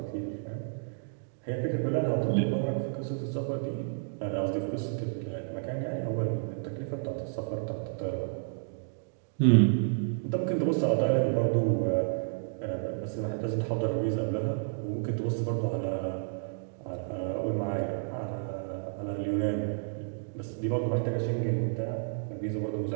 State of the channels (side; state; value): left; silent; digital silence